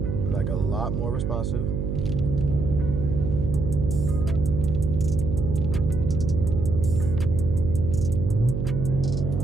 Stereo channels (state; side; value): noise; right; hum, 1 dB below the sound